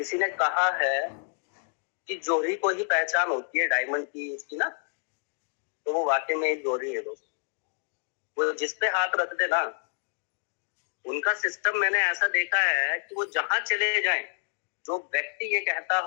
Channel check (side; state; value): right; silent; 59 dB below the other